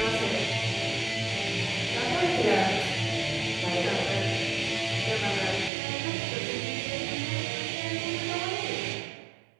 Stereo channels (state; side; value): drops out; left; at 5.7 s